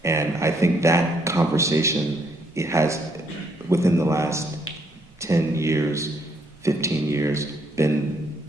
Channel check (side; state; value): both; normal; correlation 0.71